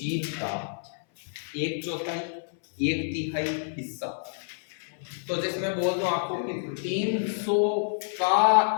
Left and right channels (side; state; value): right; silent; 57 dB below the other